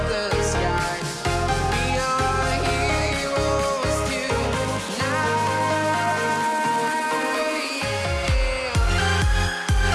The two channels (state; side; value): identical; both; correlation 1.00